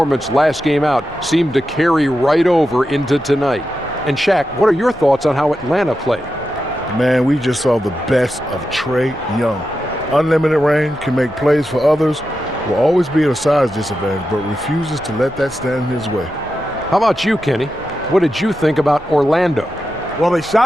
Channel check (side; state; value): both; normal; correlation 0.89